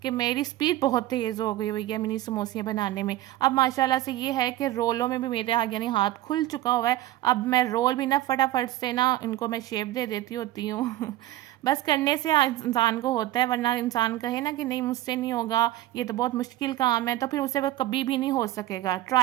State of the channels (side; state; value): left; quieter; 15.1 dB